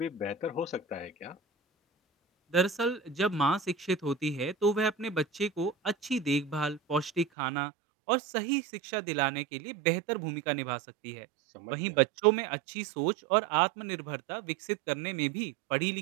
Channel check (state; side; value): drops out; left; at 7.2 s